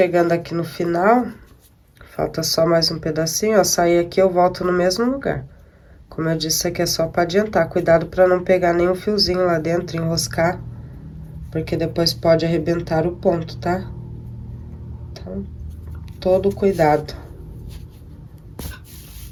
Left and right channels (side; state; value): both; identical; correlation 1.00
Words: aqui no final. Falta só mais um pedacinho, ó. Sair aqui, eu volto no mesmo lugar. Como eu disse, isso aqui é só pra adiantar. Cuidado pra não pegar nenhum fiozinho lá dentro, enroscar. Porque depois pode arrebentar o ponto, tá? Então, todo cuidado.